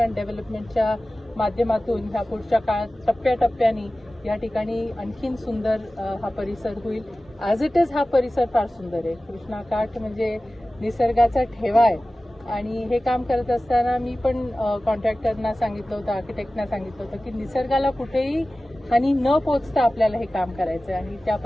डेव्हलपमेंटच्या माध्यमातून ह्या पुढच्या काळात टप्प्याटप्प्याने या ठिकाणी आणखीन सुंदर हा परिसर होईल. ॲज इट इज हा परिसर फार सुंदर आहे. कृष्णाकाठ म्हणजे निसर्गाचा ठेवा आहे. आणि हे काम करत असताना मी पण कॉन्ट्रॅक्टरना सांगितलं होतं, आर्किटेक्टना सांगितलं होतं की निसर्गाला कुठेही हानी न पोचता आपल्याला हे काम करायचं आहे. आणि त्या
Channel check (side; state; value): both; normal; correlation 0.96